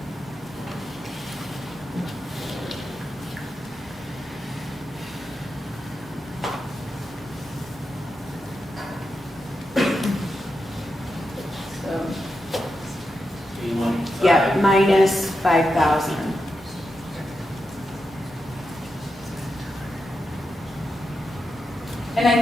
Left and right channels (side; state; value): both; normal; correlation 0.88